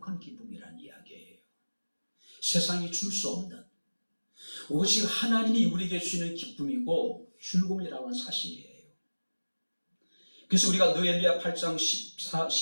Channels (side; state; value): both; inverted; correlation -1.00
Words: 기쁨이라는 이야기예요. 세상이 줄 수 없는 오직 하나님이 우리에게 주시는 기쁨이고 즐거움이라는 건 사실이에요. 그래서 우리가 느헤미야 8장